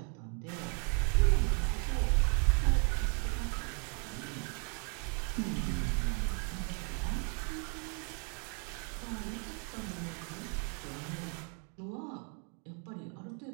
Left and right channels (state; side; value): quieter; left; 38.4 dB